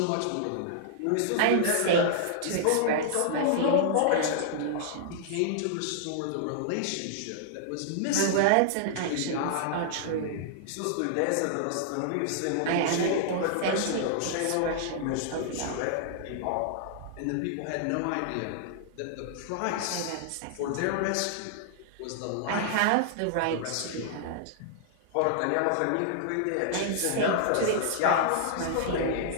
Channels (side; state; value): both; different; correlation -0.01